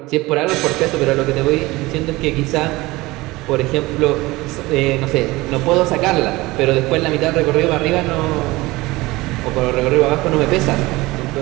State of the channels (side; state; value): left; quieter; 20.7 dB